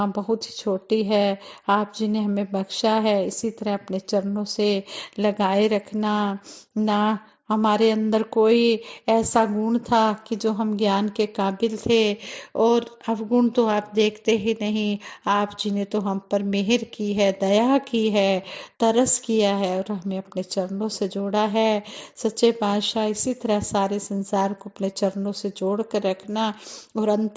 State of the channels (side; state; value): both; identical; correlation 1.00